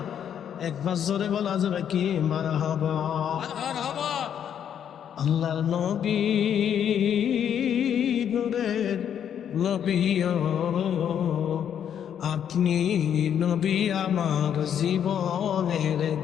একবার জোরে বলা যাবে কি মারহাবা? আল্লাহর নবী, নূরের নবী, আপনি নবী আমার জীবনের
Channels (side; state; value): right; quieter; 9.0 dB